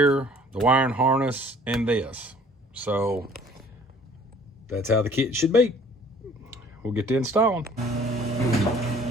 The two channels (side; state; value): both; normal; correlation 0.54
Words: the wiring harness, and this. So that's how the kit should be. We'll get to installing.